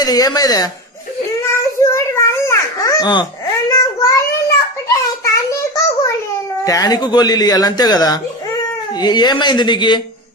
ఏమైందే. టానిక్ గోళీలు ఇవ్వాలి అంతే కదా. ఏమైంది నీకు?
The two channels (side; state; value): both; normal; correlation 0.23